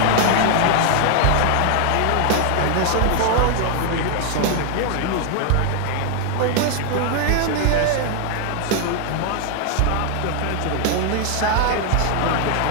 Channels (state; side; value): different; both; correlation 0.00